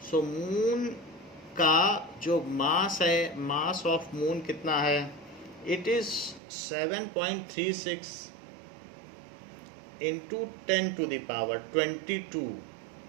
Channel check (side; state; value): left; drops out; at 6.4 s